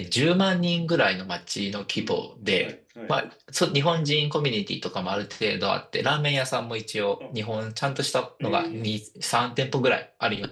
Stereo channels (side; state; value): both; identical; correlation 1.00